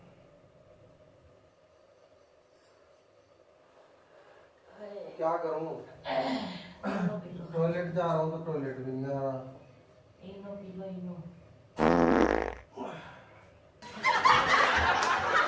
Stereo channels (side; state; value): both; identical; correlation 1.00